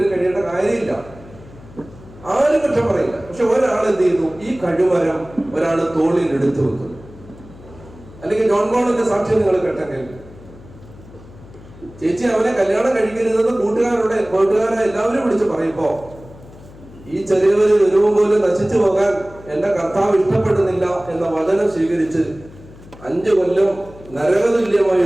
കഴിയേണ്ട കാര്യമില്ല, ആരും കുറ്റം പറയില്ല. പക്ഷെ ഒരാൾ എന്ത് ചെയ്യുന്നു, ഈ കഴിവരം ഒരാൾ തോളിൽ എടുത്തു വെക്കുന്നു. അല്ലെങ്കിൽ ജോൺ ബോളിന്റെ സാക്ഷ്യം നിങ്ങൾ കേട്ടെങ്കിൽ, ചേച്ചി അവനെ കല്യാണം കഴിക്കരുതെന്ന് കൂട്ടുകാരെ എല്ലാവരും വിളിച്ച് പറയുമ്പോ ഈ ചെറിയവര് ഒരുവും പോലും നശിച്ചു പോകാൻ എന്റെ കർത്താവ് ഇഷ്ടപ്പെടുന്നില്ല എന്ന വചനം സ്വീകരിച്ച് 5 കൊല്ലം നരകതുല്യമായ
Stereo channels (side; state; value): left; noise; hum, 20 dB below the sound